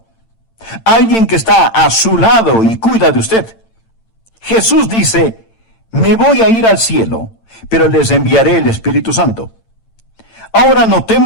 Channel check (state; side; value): late; right; 8.9 ms